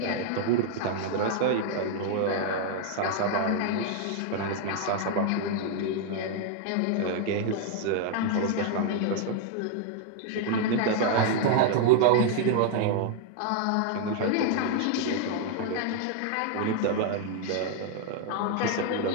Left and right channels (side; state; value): both; different; correlation 0.00